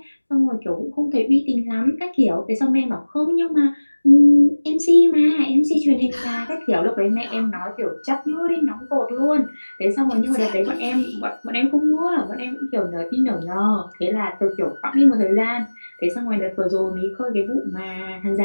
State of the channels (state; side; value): inverted; both; correlation -1.00